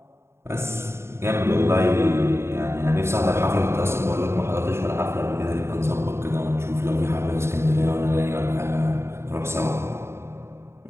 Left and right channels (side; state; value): left; late; 0.13 ms